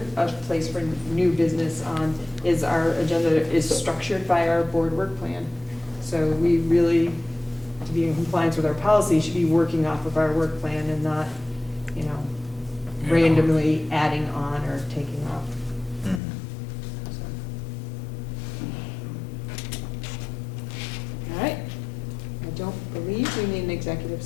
a place for new business on is our agenda is structured by our board work plan. So we really, to be in compliance with our policy, should be working off of our work plan and not, you know, randomly adding on or taking off. So. All right. I don't believe we need an executive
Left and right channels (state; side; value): drops out; right; at 16.2 s